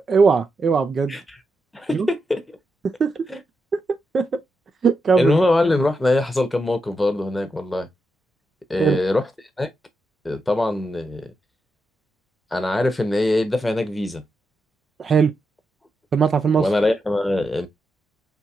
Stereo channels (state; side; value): normal; both; correlation 0.86